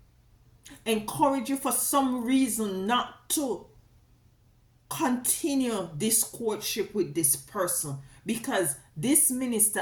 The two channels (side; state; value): both; identical; correlation 1.00